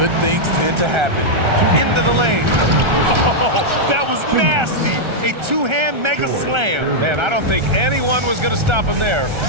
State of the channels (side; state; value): left; late; 1.3 ms